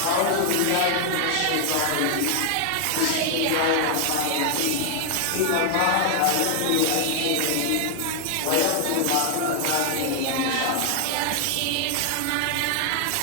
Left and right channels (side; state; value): both; different; correlation 0.00